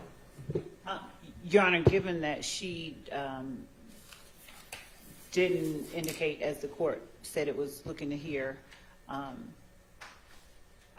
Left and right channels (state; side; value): identical; both; correlation 1.00